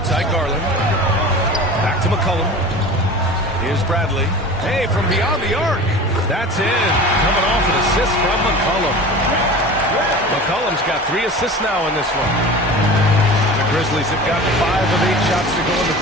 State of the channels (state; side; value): normal; both; correlation 0.36